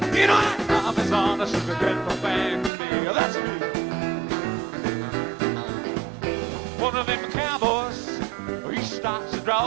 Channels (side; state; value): left; drops out; at 2.7 s